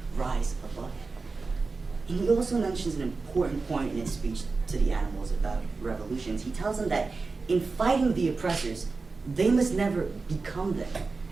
rise above it. And he also mentions an important point in his speech to the animals about revolutions. He tells them that in fighting the oppressors, they must never become them.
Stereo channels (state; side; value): quieter; left; 4.1 dB